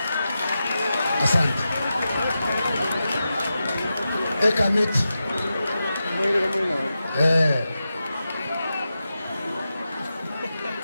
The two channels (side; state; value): both; inverted; correlation -0.91